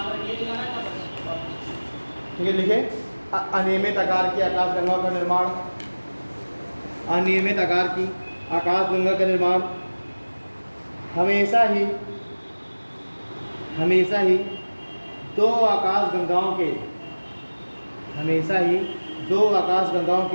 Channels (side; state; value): both; inverted; correlation -1.00